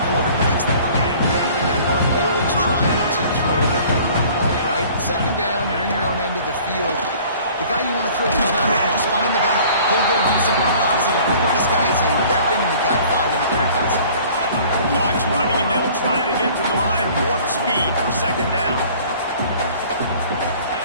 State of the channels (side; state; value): both; inverted; correlation -0.50